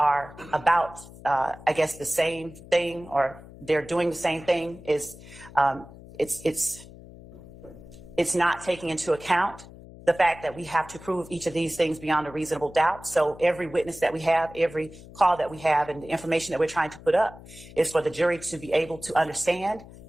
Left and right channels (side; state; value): left; noise; hum, 18 dB below the sound